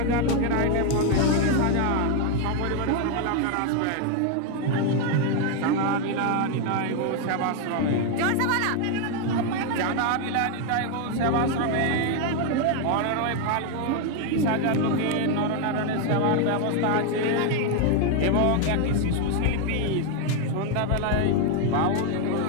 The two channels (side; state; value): both; different; correlation 0.01